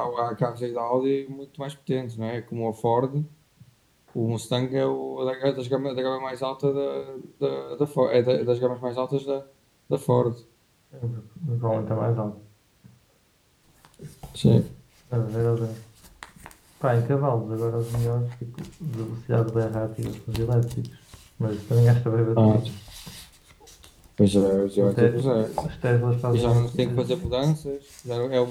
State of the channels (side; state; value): both; identical; correlation 1.00